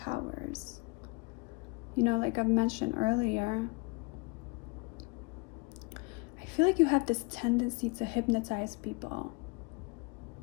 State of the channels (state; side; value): quieter; right; 28.2 dB